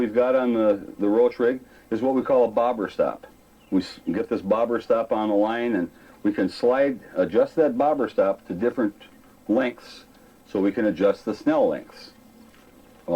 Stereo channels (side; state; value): both; identical; correlation 1.00